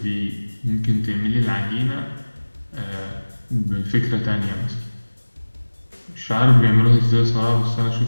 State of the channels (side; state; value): both; inverted; correlation -1.00